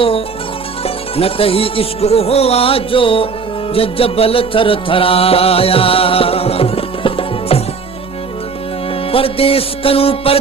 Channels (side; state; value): left; quieter; 5.1 dB